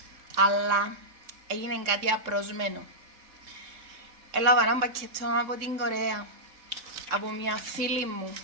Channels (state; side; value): late; left; 3.6 ms